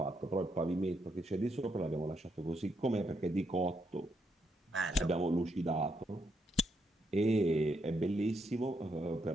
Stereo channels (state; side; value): normal; both; correlation 0.78